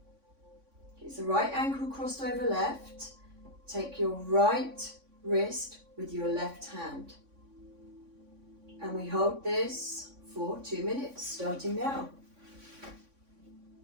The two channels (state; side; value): late; left; 3.6 ms